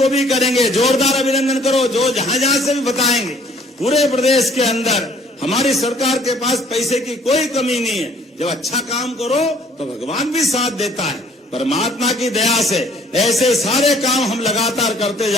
भी करेंगे। जोरदार अभिनंदन करो जो जहां जहां से भी बताएंगे। पूरे प्रदेश के अंदर हमारी सरकार के पास पैसे की कोई कमी नहीं है। जब अच्छा काम करो तो भगवान भी साथ देता है। परमात्मा की दया से ऐसे सारे काम हम लगातार करते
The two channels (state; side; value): normal; both; correlation 0.59